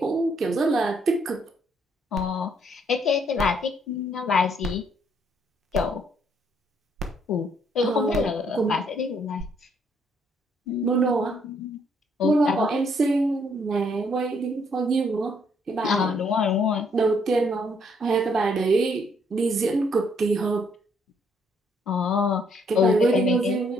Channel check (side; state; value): both; normal; correlation 0.69